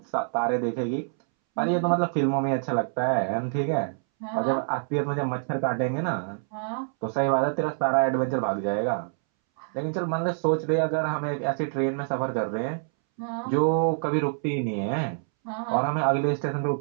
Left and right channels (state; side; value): silent; left; 61 dB below the other